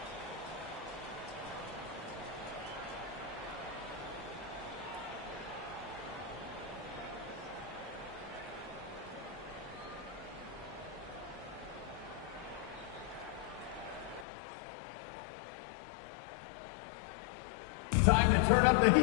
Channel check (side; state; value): right; drops out; at 14.2 s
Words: Time to turn up the